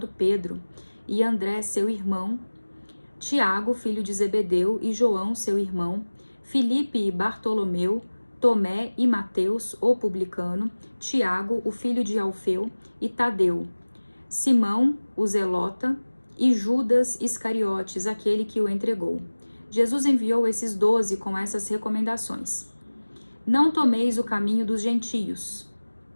Pedro, e André, seu irmão, Tiago, filho de Zebedeu, e João, seu irmão, Filipe e Bartolomeu, Tomé e Mateus, o publicano, Tiago, o filho de Alfeu, e Tadeu, Simão, o zelota, e Judas Iscariotes, aquele que o entregou. Jesus enviou esses 12 com essas recomendações: não tomeis o caminho dos gentios,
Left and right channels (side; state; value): both; inverted; correlation -1.00